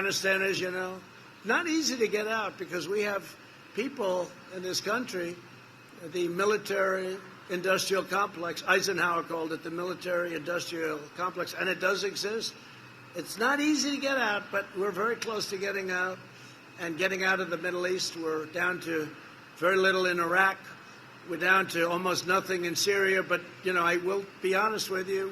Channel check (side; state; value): both; identical; correlation 1.00